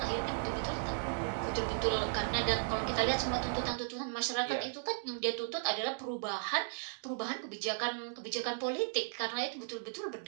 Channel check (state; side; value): silent; left; digital silence